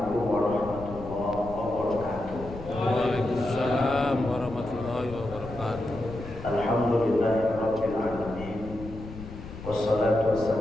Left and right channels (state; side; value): noise; left; rumble, 13 dB below the sound